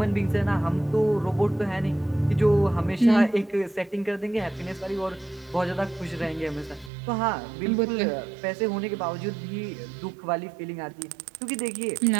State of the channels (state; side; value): drops out; left; at 6.9 s